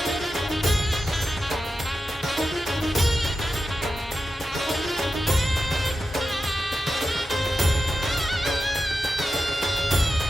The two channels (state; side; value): normal; both; correlation 0.91